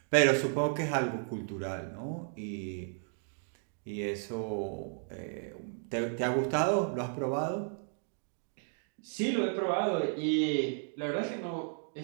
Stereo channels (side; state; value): left; silent; 55 dB below the other